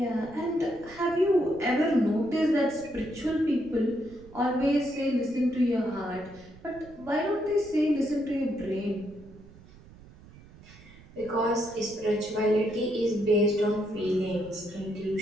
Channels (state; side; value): noise; right; rumble, 21 dB below the sound